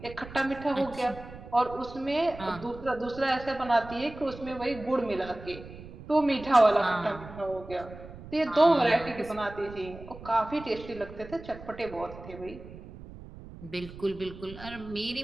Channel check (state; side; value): noise; right; rumble, 15 dB below the sound